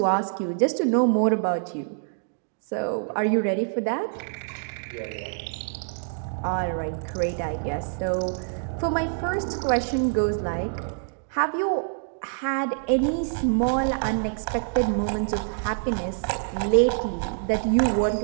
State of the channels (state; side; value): silent; left; digital silence